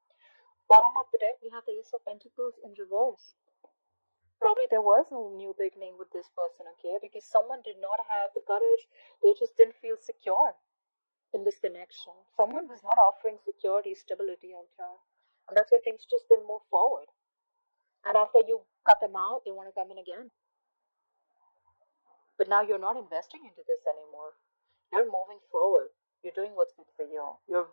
Bottom of the deck, we have the Ace of Pentacles in reverse. Probably there was no new beginning with this person, okay? Because someone did not have the courage. They just didn't feel secure in this connection. Someone was not offering security, stability out here. And that's why things just didn't move forward. And after you cut them out, they want to come in again. But now you're not investing into this anymore. You're moving forward. You're doing what's good for you. You're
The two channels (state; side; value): inverted; both; correlation -1.00